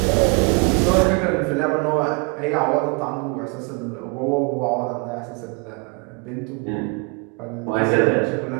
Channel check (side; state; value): left; quieter; 32.6 dB